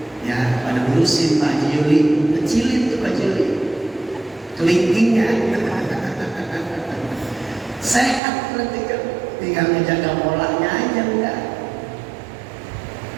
ya pada ngurusin Pak Haji Yuli, kecilin tuh Pak Haji Yuli, kelingkingnya. Sehat berarti kan, tinggal menjaga polanya aja udah.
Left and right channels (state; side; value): drops out; left; at 8.2 s